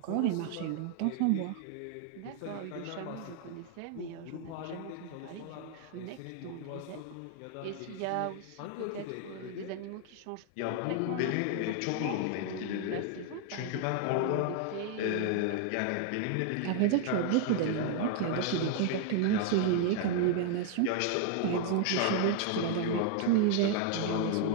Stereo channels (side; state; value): both; different; correlation 0.00